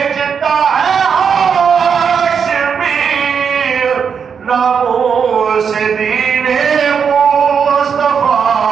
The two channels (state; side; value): quieter; left; 6.7 dB